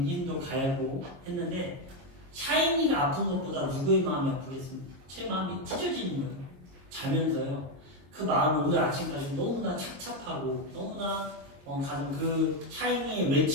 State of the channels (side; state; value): left; late; 22 ms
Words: 힘도 가하고 했는데 샤이니가 아픈 것보다 누구의 마음이 아프겠습니까? 제 마음이 찢어지는 거예요. 자면서요. 그 마음을 오늘 아침까지 너무나 착잡하고 너무나 가는 그 샤이니의